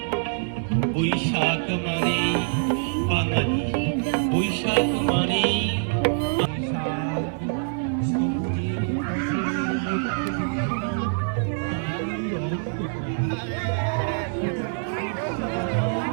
বৈশাখ মানে বাঙালি, বৈশাখ মানে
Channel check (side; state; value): left; silent; digital silence